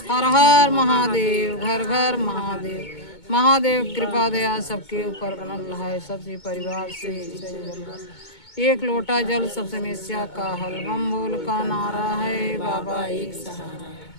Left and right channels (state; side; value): late; right; 2.2 ms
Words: हर हर महादेव, घर घर महादेव। महादेव कृपा दया सबके ऊपर बनल है, सबसे परिवार से एक लोटा जल सब समस्या का हल, बम बोल का नारा है बाबा एक सहारा।